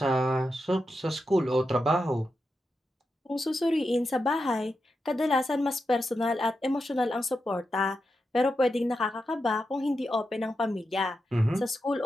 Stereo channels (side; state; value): both; normal; correlation 0.88